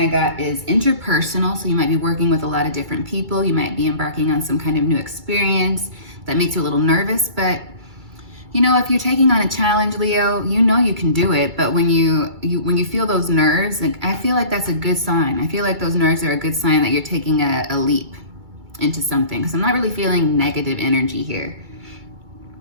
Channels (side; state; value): left; late; 2.3 ms